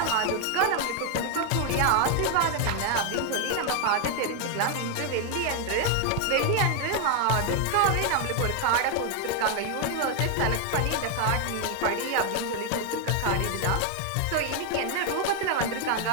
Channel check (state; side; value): different; both; correlation 0.01